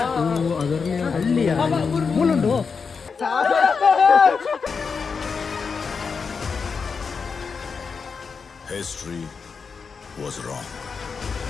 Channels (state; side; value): quieter; right; 5.4 dB